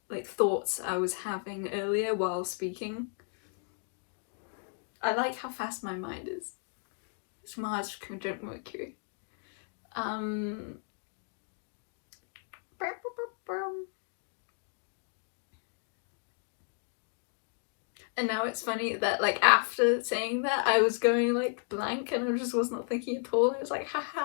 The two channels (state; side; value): silent; right; 55 dB below the other